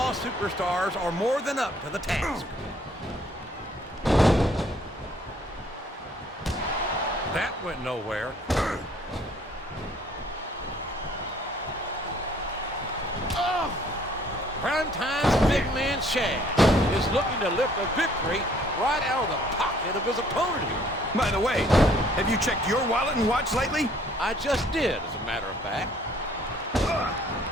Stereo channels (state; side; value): normal; both; correlation 0.60